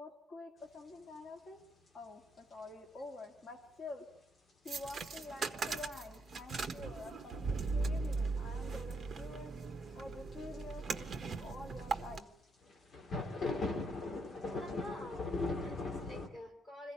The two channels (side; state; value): both; normal; correlation 0.75